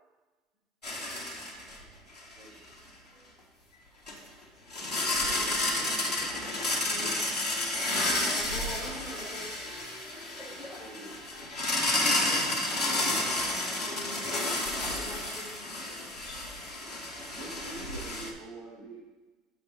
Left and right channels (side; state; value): both; normal; correlation 0.37